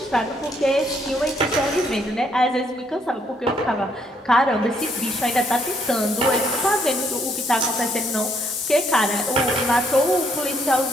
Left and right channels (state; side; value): normal; both; correlation 0.70